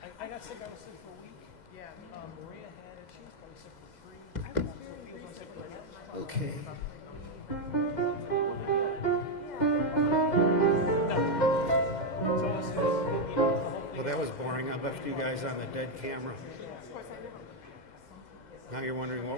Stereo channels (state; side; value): late; right; 2.0 ms